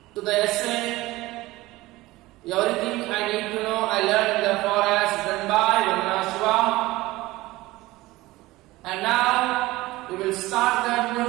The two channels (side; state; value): left; quieter; 19.0 dB